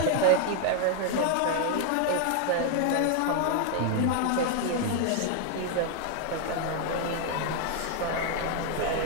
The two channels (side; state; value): both; different; correlation 0.00